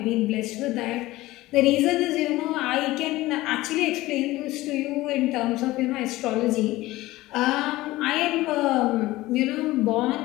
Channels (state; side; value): quieter; right; 18.0 dB